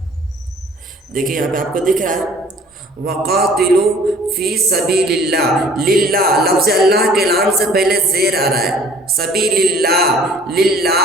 देखिए यहाँ पे आपको दिख रहा है वक़ातिलू फ़ी सबीलिल्लाह। लिल्लाह लफ्ज़ अल्लाह के नाम से पहले ज़ेर आ रहा है। सबीलिल्लाह,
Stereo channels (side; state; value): both; normal; correlation 0.51